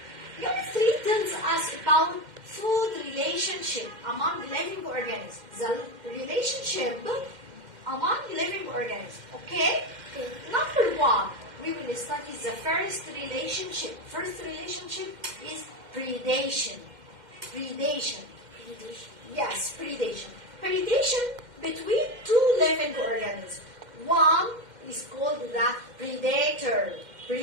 Unit 3 tells us about food relationship among living organisms. The relationship among living organisms. Okay? Number 1, we will study the first relationship. First relationship is predation. Predation. Yes, predation. Predation between two living organisms. One is called the predator.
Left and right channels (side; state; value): left; late; 2.1 ms